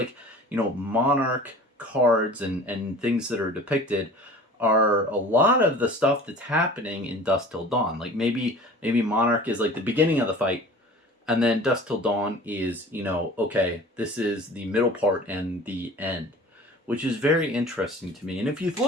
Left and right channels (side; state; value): both; normal; correlation 0.43